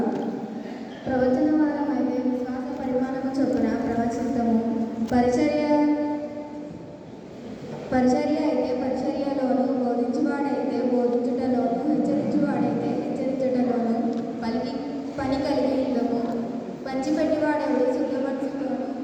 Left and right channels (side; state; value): both; identical; correlation 1.00